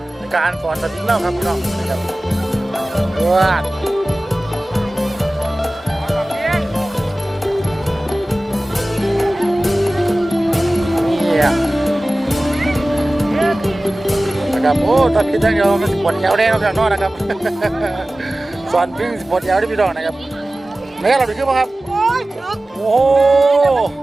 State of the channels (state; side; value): normal; both; correlation 0.97